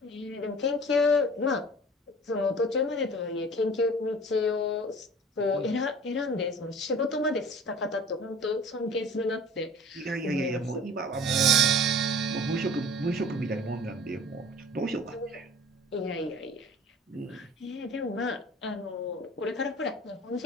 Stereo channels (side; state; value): both; normal; correlation 0.44